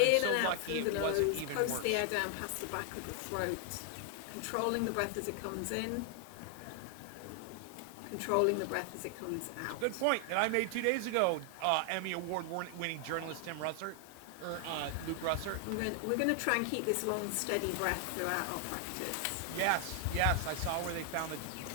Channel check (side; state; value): both; different; correlation 0.00